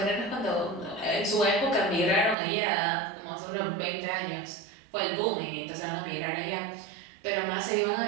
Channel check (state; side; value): drops out; left; at 2.4 s